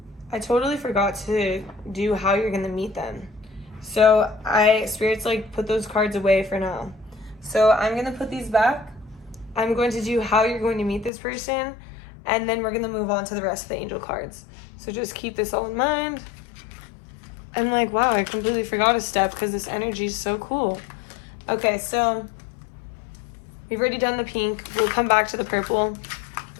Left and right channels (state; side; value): drops out; right; at 11.1 s